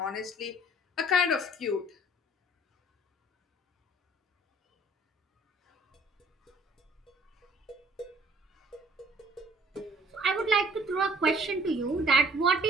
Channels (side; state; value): both; normal; correlation 0.57